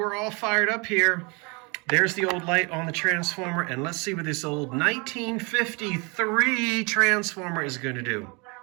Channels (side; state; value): left; quieter; 30.2 dB